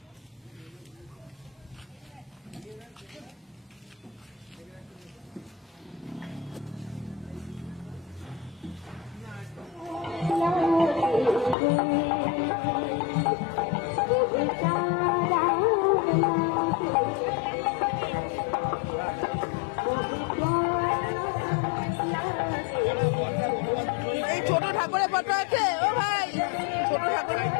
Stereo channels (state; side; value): drops out; right; at 11.6 s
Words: এই ছোট ঠাকুরের ফটো আছে ও ভাই, ছোট ঠাকুরের